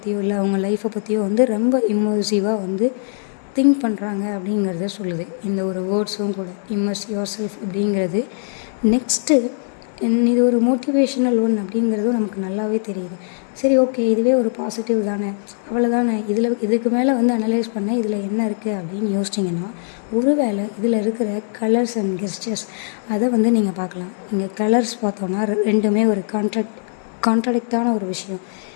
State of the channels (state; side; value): silent; right; 65 dB below the other